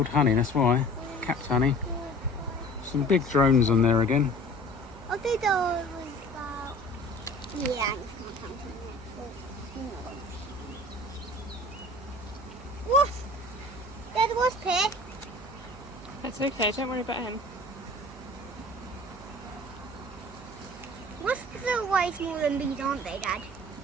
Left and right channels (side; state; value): right; noise; hum, 18 dB below the sound